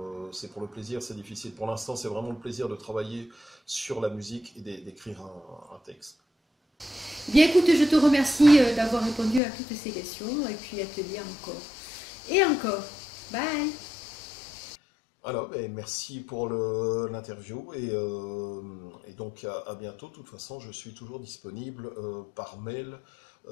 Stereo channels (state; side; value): drops out; right; at 9.4 s